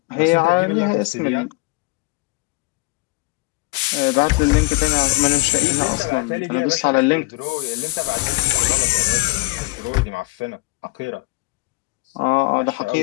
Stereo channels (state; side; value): quieter; right; 23.6 dB